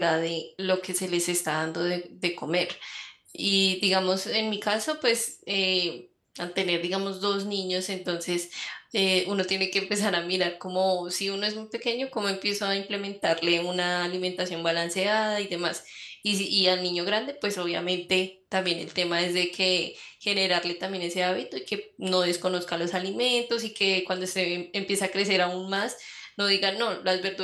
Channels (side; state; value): both; identical; correlation 1.00